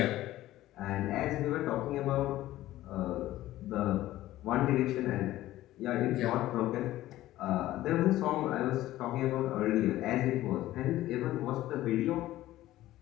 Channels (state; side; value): quieter; right; 15.2 dB